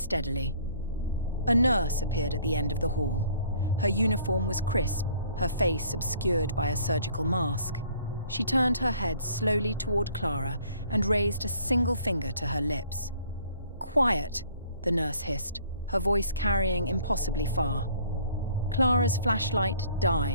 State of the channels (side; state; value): both; inverted; correlation -0.57